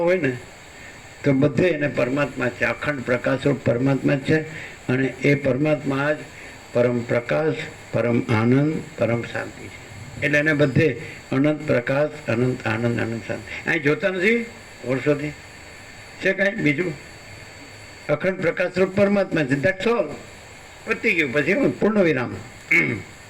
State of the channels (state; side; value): identical; both; correlation 1.00